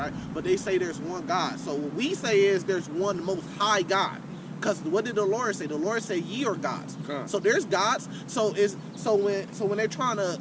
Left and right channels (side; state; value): both; identical; correlation 1.00